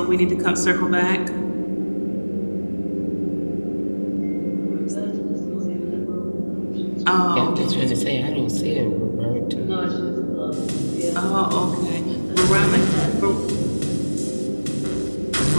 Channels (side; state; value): both; inverted; correlation -1.00